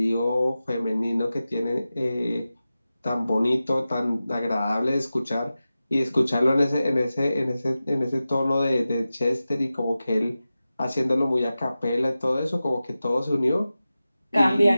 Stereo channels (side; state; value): both; inverted; correlation -0.94